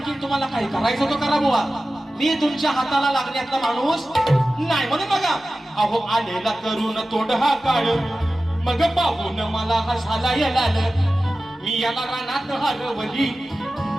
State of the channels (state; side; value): normal; both; correlation 0.95